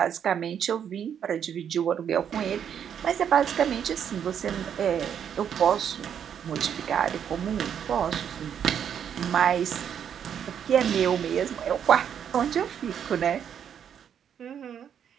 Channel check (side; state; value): left; quieter; 8.5 dB